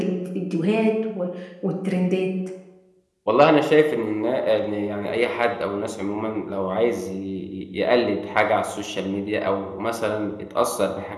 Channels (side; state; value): both; identical; correlation 1.00